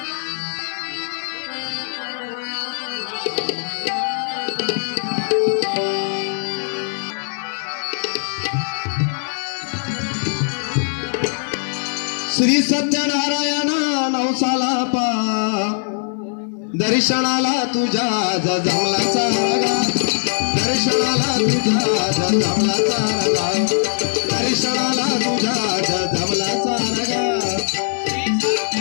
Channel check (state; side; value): silent; right; 56 dB below the other